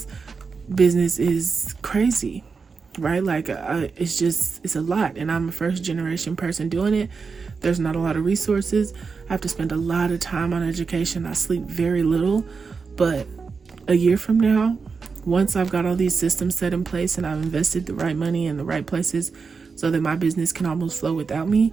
business is crazy, right? Like, it's a lot, and I'm a first generation person doing it. There's not a lot of resources. I have to spend a lot of time on education. I sleep very little, but a year from now, once I've got all these systems set in place and I've invested the right money in the right places so that my business can almost flow without me,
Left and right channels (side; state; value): left; quieter; 5.0 dB